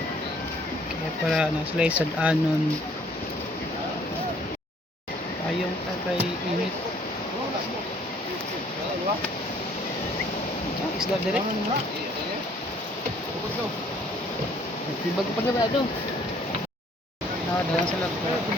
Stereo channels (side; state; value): both; normal; correlation 0.60